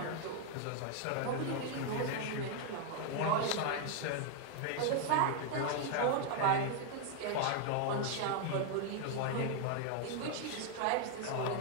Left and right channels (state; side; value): different; both; correlation 0.00